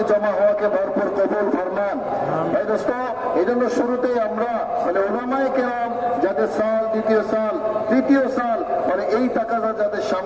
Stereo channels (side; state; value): left; noise; rumble, 28 dB below the sound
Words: জমা হওয়াকে ভরপুর কবুল ফরমান। ভাই দোস্ত এই জন্য শুরুতেই আমরা মানে উলামায়ে কেরাম যাদের সাল, দ্বিতীয় সাল, তৃতীয় সাল মানে এই তাকাজা যাদের